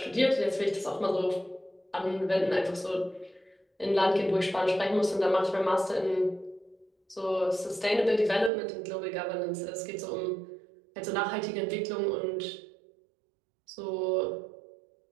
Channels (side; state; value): left; drops out; at 8.5 s